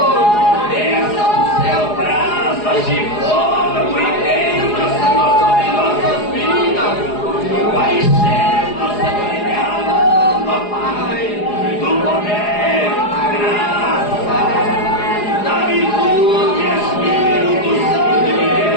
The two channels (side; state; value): right; late; 4.8 ms